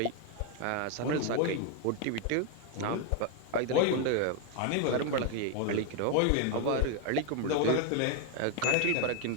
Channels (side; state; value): both; different; correlation 0.01